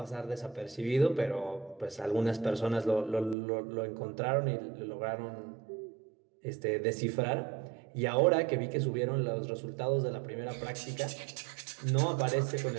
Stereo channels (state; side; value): drops out; left; at 3.4 s